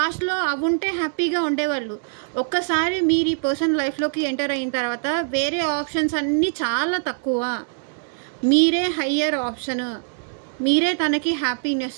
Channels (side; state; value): left; silent; digital silence